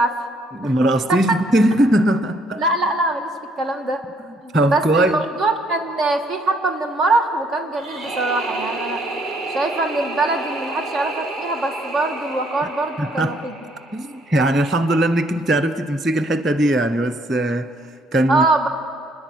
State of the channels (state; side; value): normal; both; correlation 0.67